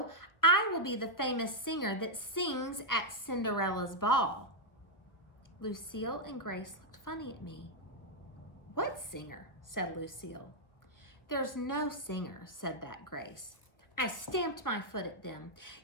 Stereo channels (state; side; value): late; right; 1.2 ms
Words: I will be the famous singer that sings at Cinderella's ball. Lucille and Grace looked funny at me. What singer? Said Lucille. There's no singer, said that Grace. I stamped my foot at them.